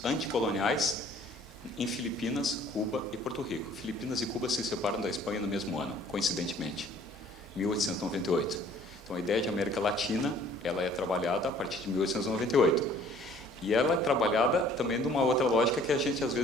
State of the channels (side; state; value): both; normal; correlation 0.55